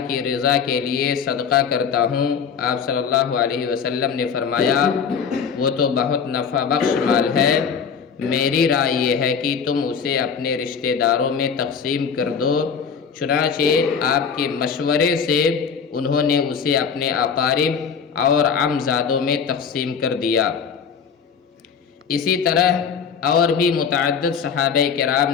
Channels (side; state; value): right; quieter; 6.6 dB